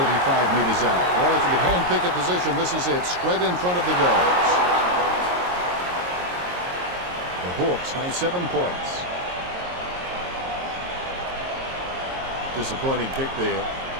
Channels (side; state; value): left; late; 22 ms